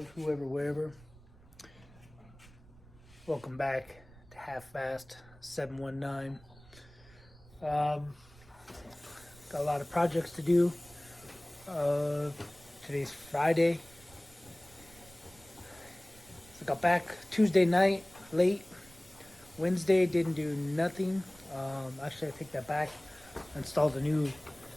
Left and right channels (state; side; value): noise; right; rumble, 24 dB below the sound